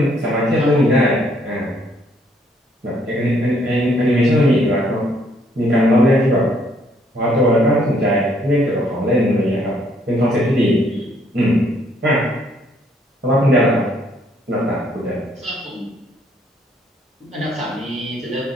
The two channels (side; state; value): both; normal; correlation 0.68